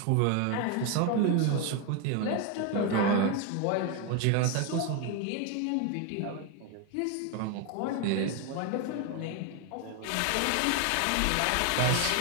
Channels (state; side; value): different; both; correlation 0.01